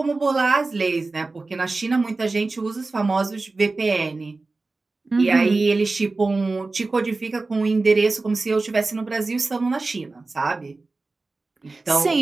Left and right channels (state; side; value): quieter; left; 3.5 dB